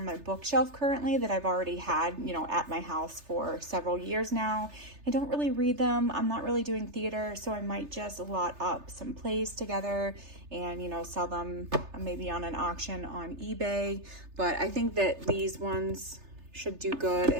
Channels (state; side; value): late; left; 3.3 ms